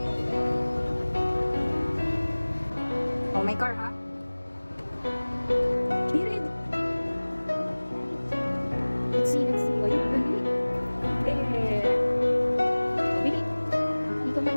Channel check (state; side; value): inverted; both; correlation -1.00